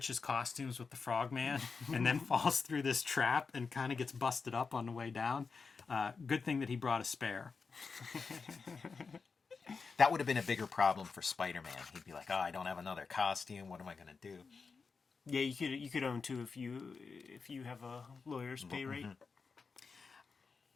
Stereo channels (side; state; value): right; quieter; 4.9 dB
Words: costumes with the Frogman and then falls through this trap and kind of gets busted up on the way down. Good thing that he brought a spare. That would have been a bigger problem for Spider-Man. He'd be like, "Oh, I don't have another costume. What am I going to do?" Yeah, you could own two if you have a lawyer's pay rate.